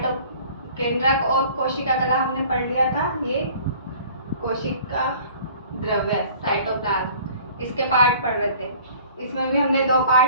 केंद्रक और कोशिका कला हमने पढ़ लिया था। ये कोशिका द्रव्य साइटोप्लाज्म, इसके पार्ट पढ़ रहे थे। इसमें भी हमने 2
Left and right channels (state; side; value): inverted; both; correlation -0.49